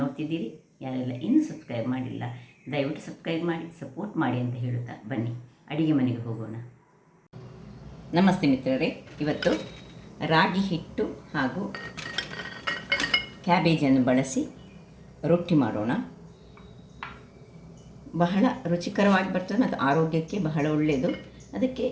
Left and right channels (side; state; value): both; identical; correlation 1.00